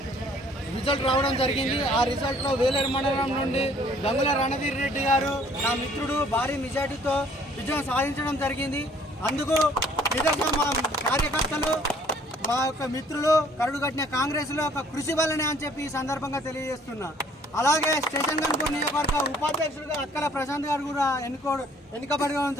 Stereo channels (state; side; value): normal; both; correlation 0.58